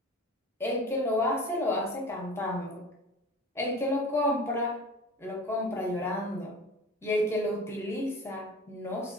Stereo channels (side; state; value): both; normal; correlation 0.37